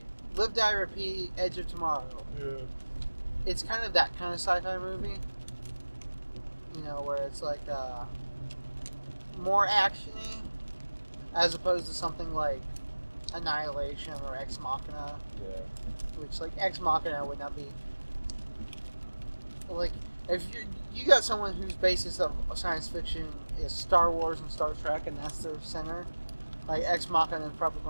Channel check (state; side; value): inverted; both; correlation -1.00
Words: Live Die Repeat, Edge of Tomorrow. Yeah. It's kind of that kind of sci-fi movie. You know, where it's like more actiony as opposed to something like Annihilation or Ex Machina. Yeah. Which like Ex Machina would not be like if you got someone whose basis of science fiction is Star Wars and Star Trek and that's their center, like Ex Machina is probably